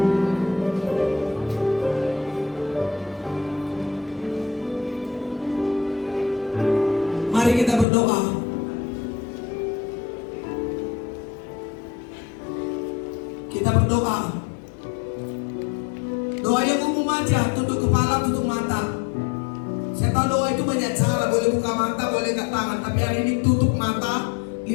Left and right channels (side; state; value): right; drops out; at 7.9 s